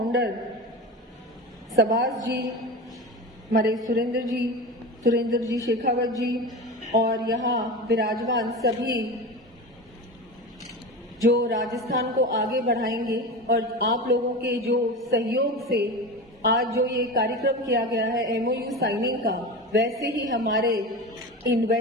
सबास जी, हमारे सुरेंद्र जी शेखावत जी और यहाँ विराजमान सभी जो राजस्थान को आगे बढ़ाएंगे और आप लोगों के जो सहयोग से आज जो ये कार्यक्रम किया गया है MOU साइनिंग का, वैसे ही हमारे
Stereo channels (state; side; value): normal; both; correlation 0.26